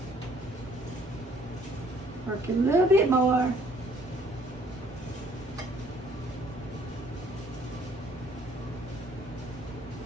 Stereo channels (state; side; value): normal; both; correlation 0.60